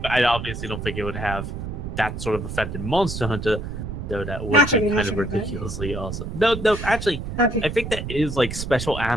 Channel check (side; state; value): right; noise; rumble, 6 dB below the sound